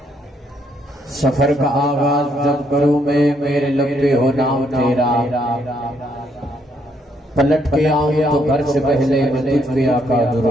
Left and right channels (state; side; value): normal; both; correlation 0.73